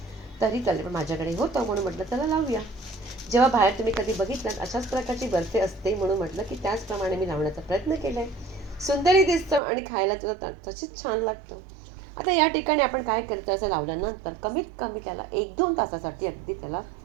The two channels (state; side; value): drops out; left; at 9.6 s